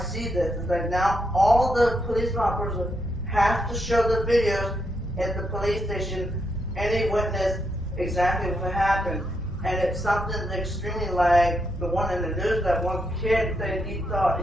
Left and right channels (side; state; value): both; normal; correlation 0.80